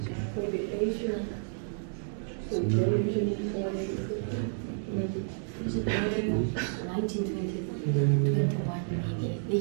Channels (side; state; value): left; silent; digital silence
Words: Maybe Asia. So television for maybe.